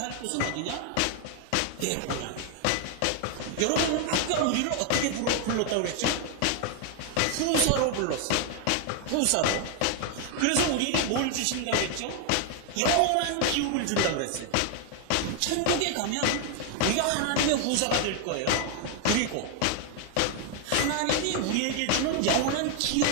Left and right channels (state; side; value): different; both; correlation 0.00